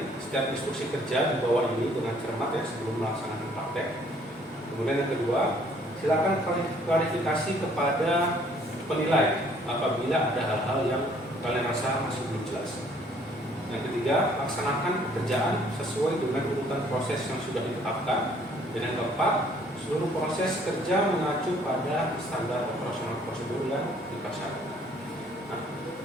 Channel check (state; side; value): normal; both; correlation 0.61